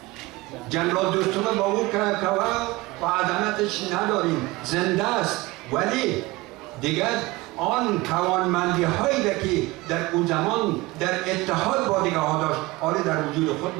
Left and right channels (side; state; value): left; quieter; 21.2 dB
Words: جنرال دوستم با او که و عظمتش نداریم، زنده است، ولی دیگر آن توانمندی هایی که در اون زمان در اتحاد با دیگه ها داشت آن در وجود